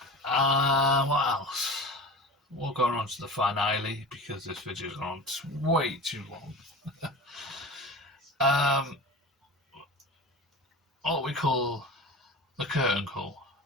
What else? We'll go on to the finale because this video's gone on way too long. What we call the curtain call.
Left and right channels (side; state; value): both; normal; correlation 0.33